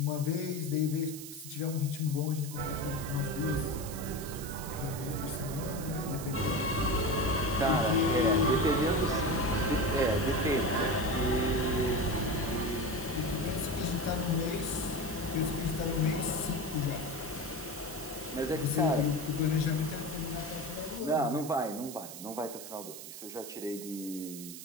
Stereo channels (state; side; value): noise; right; hiss, 11 dB below the sound